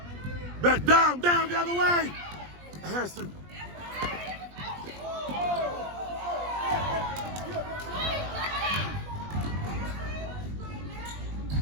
Back down, the other way. Adison.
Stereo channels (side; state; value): left; late; 20 ms